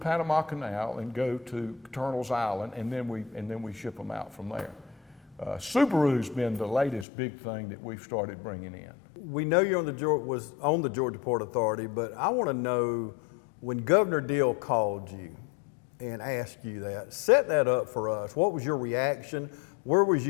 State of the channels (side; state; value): right; drops out; at 7.1 s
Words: Canal and go to Colonel's Island, and then we ship them out from there. Subaru's been the latest big thing that we've started bringing in. We know you're on the Georgia Port Authority, but I want to know, when Governor Deal called you and asked you that, set that up for us. What was your reaction? Where was